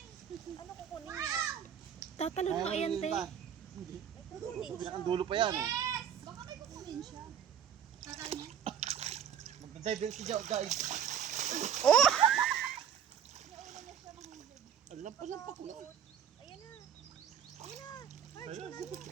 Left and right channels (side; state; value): left; quieter; 8.5 dB